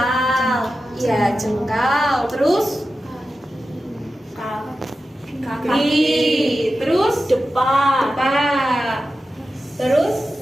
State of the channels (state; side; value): normal; both; correlation 0.92